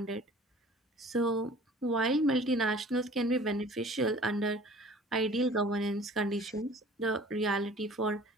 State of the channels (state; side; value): normal; both; correlation 0.48